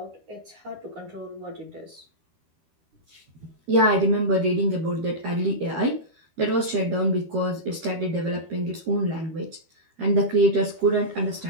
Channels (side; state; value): left; late; 12 ms